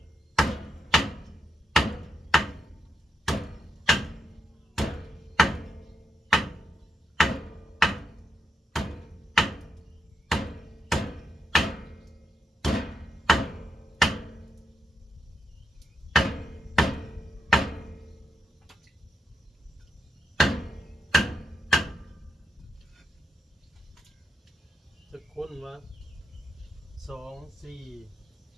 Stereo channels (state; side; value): normal; both; correlation 0.82